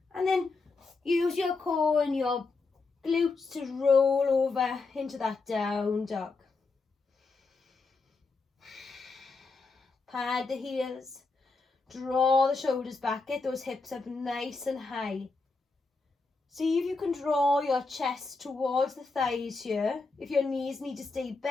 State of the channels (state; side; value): quieter; right; 4.0 dB